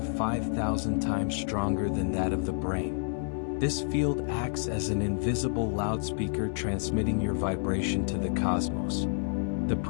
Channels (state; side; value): silent; right; 58 dB below the other